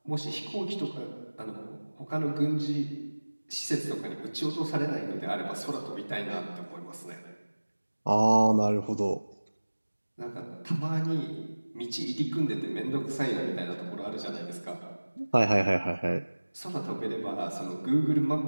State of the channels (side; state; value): both; inverted; correlation -1.00